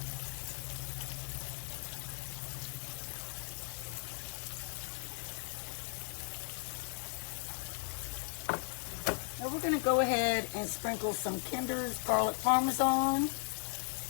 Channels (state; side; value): silent; right; 53 dB below the other